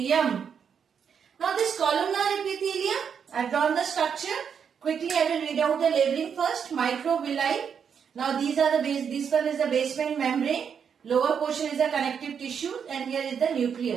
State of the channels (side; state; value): left; quieter; 7.2 dB